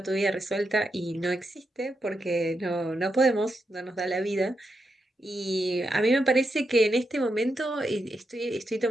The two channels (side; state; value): both; normal; correlation 0.84